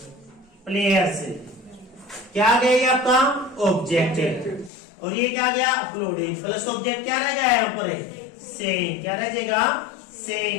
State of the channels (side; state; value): right; drops out; at 4.7 s